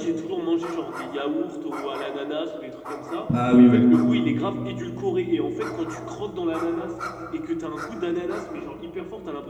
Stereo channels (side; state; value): both; identical; correlation 1.00